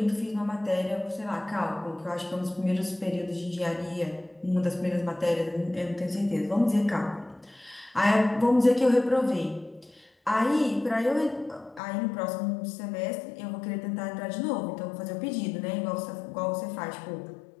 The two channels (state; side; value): drops out; right; at 11.8 s